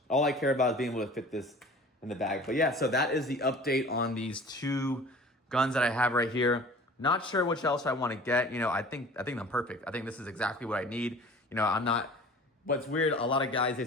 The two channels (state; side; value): normal; both; correlation 0.44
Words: All I care about is being able to fit this in the bag. But yeah, so that is the update on these 2 guns that I have right here. Not sure which else I want to get. You know, I think I'm perfect. I think this is exactly what I need. You know, I'm not. What's weird, a lot of guys, they